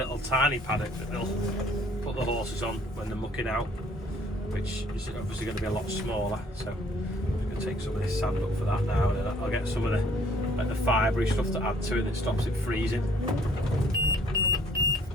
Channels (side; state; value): both; normal; correlation 0.59